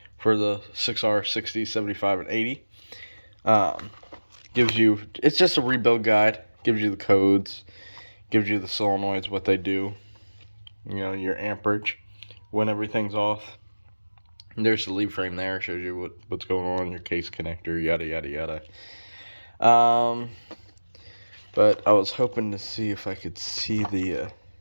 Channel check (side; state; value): both; inverted; correlation -1.00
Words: for the 6R 60, 75, and 80. It's just a rebuild guide. Gives you the codes, gives you the solenoids, what they do, your amperage, when everything's off. And there's the lead frame there, shows you what's going on, your case connector, yada yada yada. But I was hoping to see if I could see the